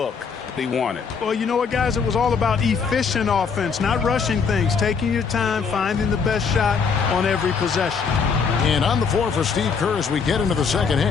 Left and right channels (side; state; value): right; quieter; 5.7 dB